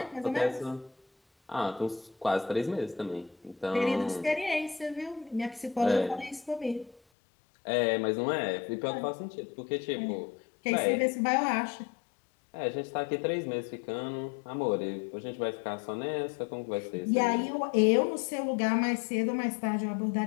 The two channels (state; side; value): drops out; right; at 7.0 s